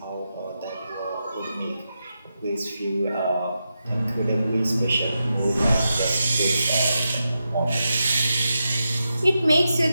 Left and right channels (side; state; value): both; inverted; correlation -0.88